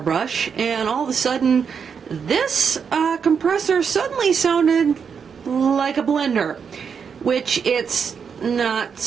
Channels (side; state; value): left; quieter; 6.6 dB